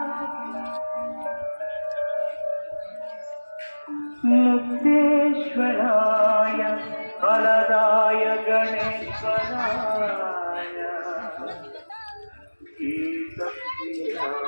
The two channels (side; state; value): both; inverted; correlation -1.00